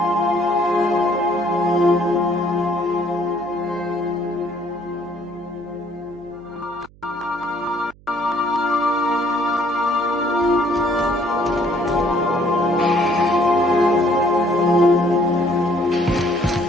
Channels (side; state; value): right; noise; hum, 25 dB below the sound